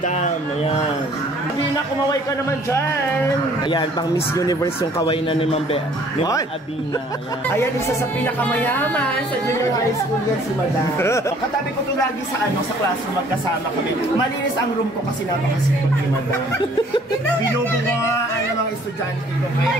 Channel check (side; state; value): both; normal; correlation 0.57